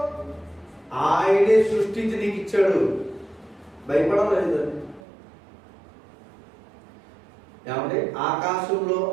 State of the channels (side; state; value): left; drops out; at 5.0 s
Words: ఆయనే సృష్టించి నీకు ఇచ్చాడు. భయపడలేదు. ఏమంటే ఆకాశంలో